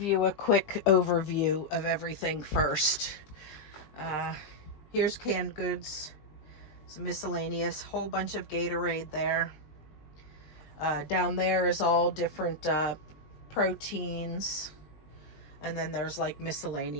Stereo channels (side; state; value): right; late; 20 ms